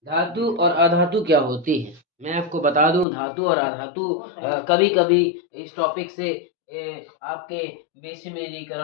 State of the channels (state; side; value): drops out; right; at 3.1 s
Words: धातु और अधातु क्या होती है, मैं आपको बता दूं। धातु और अधातु कभी कभी इस टॉपिक से आपके